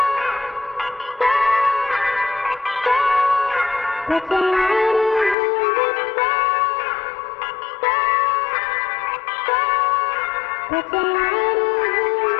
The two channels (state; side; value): drops out; right; at 5.4 s